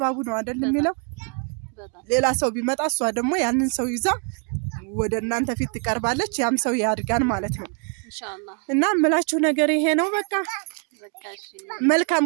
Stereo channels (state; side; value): quieter; left; 39.4 dB